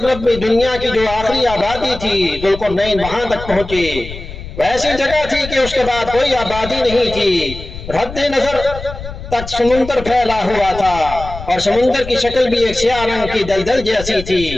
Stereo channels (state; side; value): noise; left; rumble, 11 dB below the sound